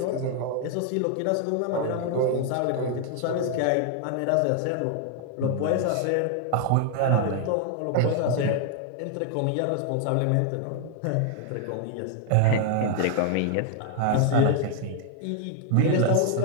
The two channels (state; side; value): different; both; correlation 0.00